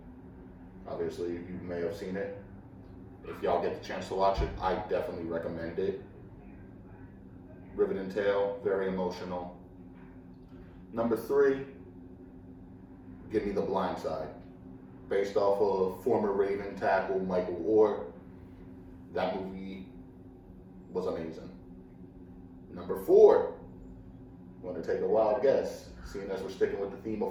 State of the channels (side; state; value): both; identical; correlation 1.00